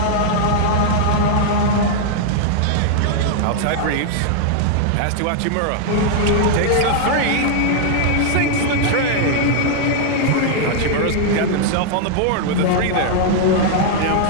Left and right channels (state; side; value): different; both; correlation -0.01